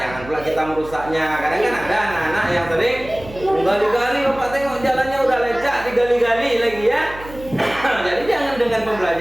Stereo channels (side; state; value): right; noise; hum, 16 dB below the sound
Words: pula kita merusaknya. Kadang kan ada anak-anak yang sering gali-gali, Bapak tengok jalannya udah lecak, digali-gali lagi ya. Jadi jangan dengan